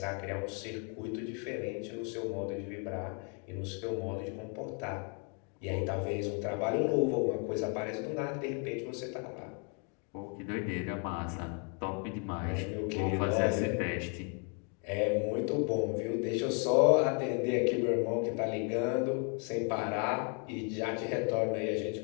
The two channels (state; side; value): quieter; right; 38.5 dB